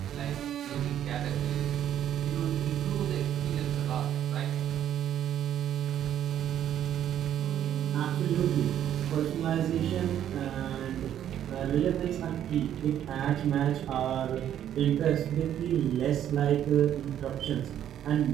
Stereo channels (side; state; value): left; quieter; 10.6 dB